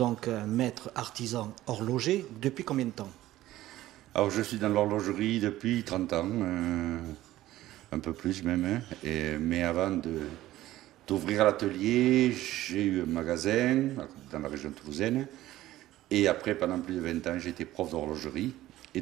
un maître artisan horloger depuis combien de temps? Alors, je suis dans l'horlogerie depuis 30 ans, un peu plus même, hein, mais avant d'ouvrir l'atelier, j'ai eu un magasin dans la région toulousaine, et après, pendant plus de 20 ans, j'ai été prof d'horlogerie, et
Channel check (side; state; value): left; quieter; 15.2 dB